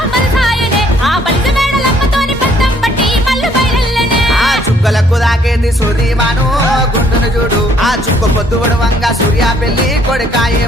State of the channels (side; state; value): both; normal; correlation 0.64